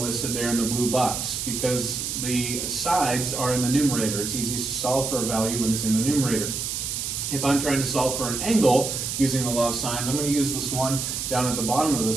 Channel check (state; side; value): noise; right; hiss, 3 dB below the sound